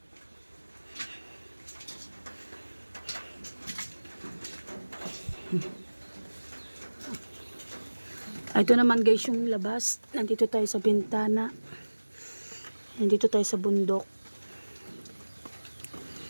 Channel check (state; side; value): inverted; both; correlation -1.00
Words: Ito naman guys yung labas. Nandito tayo sa bintana. Nandito tayo sa bundok.